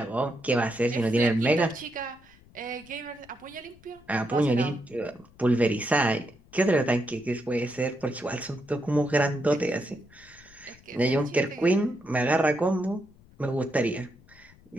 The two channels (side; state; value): left; noise; rumble, 26 dB below the sound